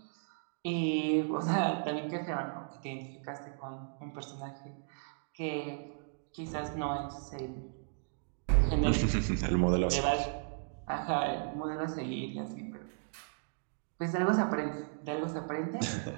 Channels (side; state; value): left; silent; digital silence